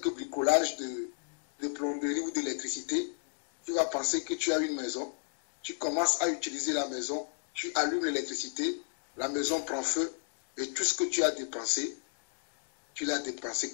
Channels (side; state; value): right; silent; digital silence